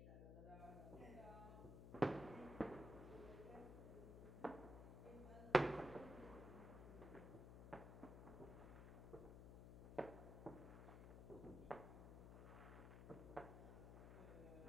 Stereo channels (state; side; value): noise; left; hum, 9 dB below the sound